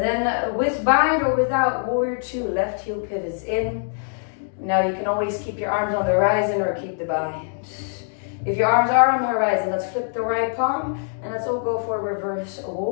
then with bind or without, warrior 2, left heel pivots in. Now you can always keep your arms on the horizon or keep the bind. If your arms are on the horizon, let's flip the right palm and let's all go for a reverse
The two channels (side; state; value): right; silent; digital silence